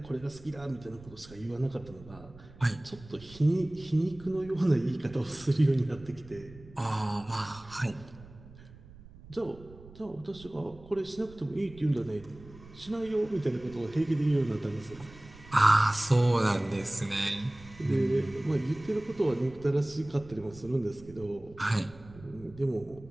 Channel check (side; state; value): right; noise; rumble, 20 dB below the sound